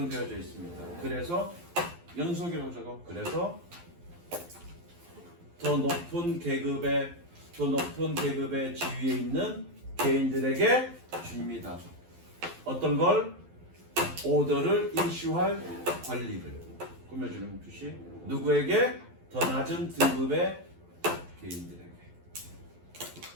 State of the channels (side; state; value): left; late; 12 ms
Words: 있습니다. 그래서 연속이라고 적어. 그래서 더 높은 계급의 지위에 있는 개인들에게 줍니다. 어떤 걸? 오더를 이슈할 권리를 꾸며주는 뜻이 누구에게? 더 낮은 등급의 개인들에게.